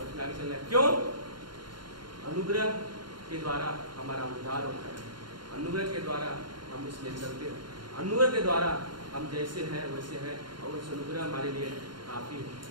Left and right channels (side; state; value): left; late; 0.72 ms